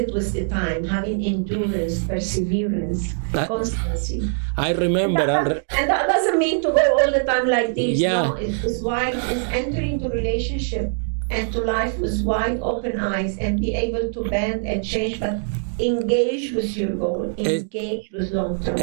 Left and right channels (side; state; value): left; silent; digital silence